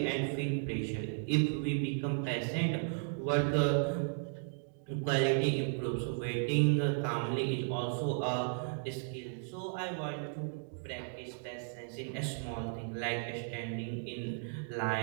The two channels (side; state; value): left; silent; digital silence